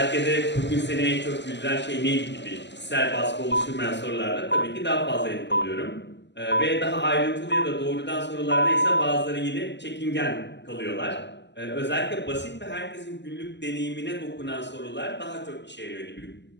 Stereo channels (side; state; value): right; late; 0.51 ms